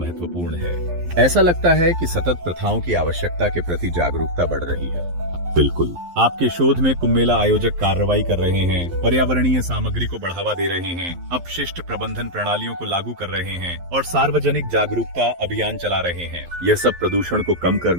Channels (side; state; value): left; late; 11 ms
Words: है। ऐसा लगता है कि सतत प्रथाओं की आवश्यकता के प्रति जागरूकता बढ़ रही है। बिल्कुल। आपके शोध में कुंभ मेला आयोजक कार्रवाई कर रहे हैं, पर्यावरणीय सामग्री को बढ़ावा दे रहे हैं, अपशिष्ट प्रबंधन प्रणालियों को लागू कर रहे हैं और सार्वजनिक जागरूकता अभियान चला रहे हैं। यह सब प्रदूषण को कम